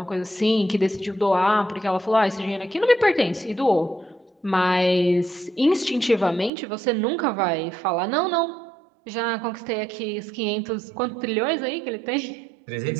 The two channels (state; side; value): drops out; left; at 6.5 s